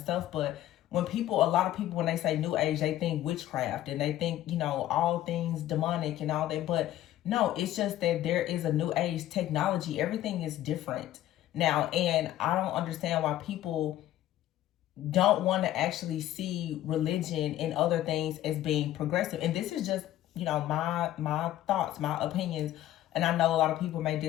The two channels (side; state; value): right; quieter; 13.6 dB